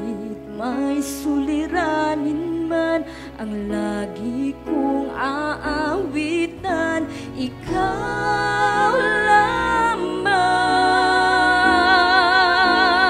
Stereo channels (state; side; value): identical; both; correlation 1.00